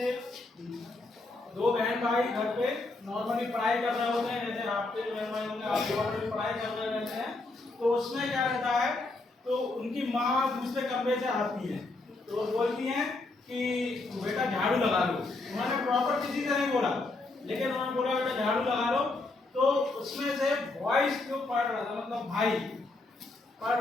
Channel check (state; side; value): quieter; right; 3.2 dB